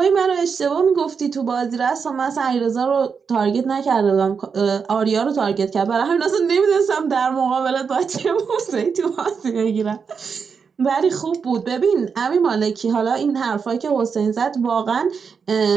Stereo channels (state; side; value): quieter; left; 5.9 dB